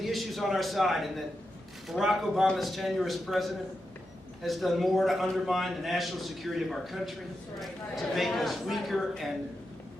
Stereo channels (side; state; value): both; normal; correlation 0.88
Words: the issues on our side, and that Barack Obama's tenure as president has done more to undermine the national security of our country, to make us weaker and